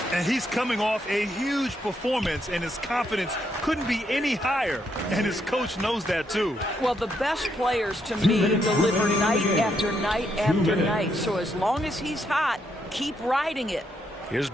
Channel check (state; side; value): normal; both; correlation 0.77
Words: And he's coming off a huge performance, and his confidence couldn't be any higher. And his coach knows that, too. Well, the best players, to me, deliver night after night after night. So as long as he's hot, keep riding it. Here's